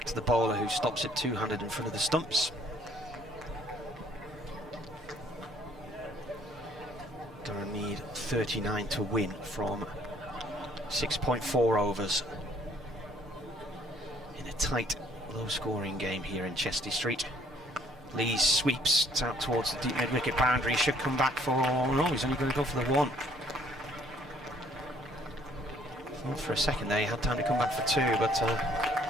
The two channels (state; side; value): normal; both; correlation 0.62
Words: to the bowler, who stops it two-handed in front of the stumps. Durham need 39 to win from 6.4 overs in a tight, low-scoring game here in Chester Street. Lees sweeps out towards the deep mid-wicket boundary. He should come back for... no, he's only going to go for the 1. Thought for a second there he had time to come back for 2, but